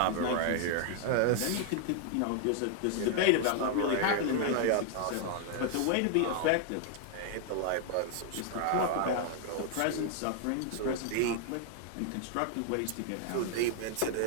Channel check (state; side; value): different; both; correlation 0.00